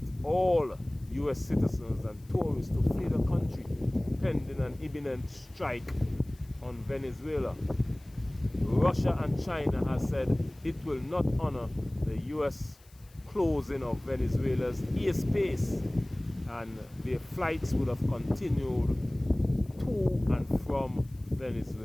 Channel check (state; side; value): noise; left; hiss, 28 dB below the sound